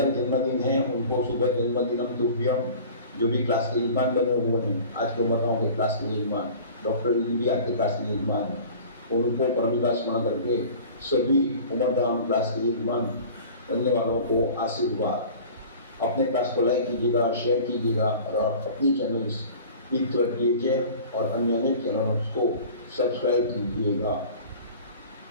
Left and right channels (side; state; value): both; inverted; correlation -0.42